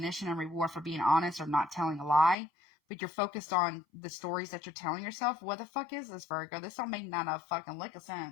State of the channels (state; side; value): drops out; right; at 2.4 s